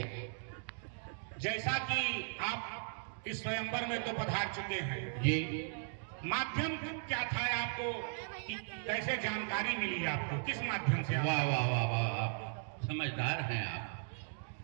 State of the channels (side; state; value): left; silent; digital silence